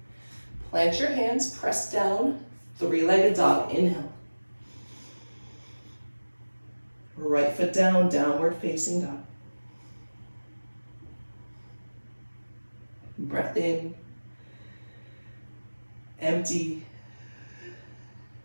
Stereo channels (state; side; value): inverted; both; correlation -1.00